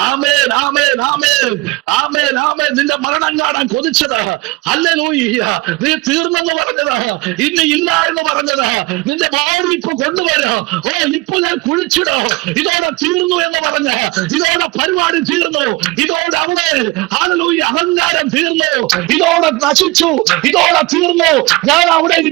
ആമേൻ, ആമേൻ, ആമേൻ, ആമേൻ, ആമേൻ. നിന്റെ മരണം കാണാൻ കൊതിച്ചത്, ഹല്ലേലൂയ, നീ തീർന്നെന്ന് പറഞ്ഞത്, ഇനി ഇല്ല എന്ന് പറഞ്ഞത്, നിന്റെ ഭാര്യ ഇപ്പൊ കൊണ്ടുവരോ, ഇപ്പൊ ഞാൻ കുഴിച്ചിടോ, ഇതോടെ തീർന്നു എന്ന് പറഞ്ഞ്, ഇതോടെ പരിപാടി തീർന്നു, ഇതോടെ അവിടെ ഹല്ലേലൂയ അഹങ്കാരം തീർന്നു, ഇതോടെ നശിച്ചു, ഇതോടെ തീർന്നു, ഞാൻ അവിടെ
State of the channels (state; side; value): quieter; left; 22.0 dB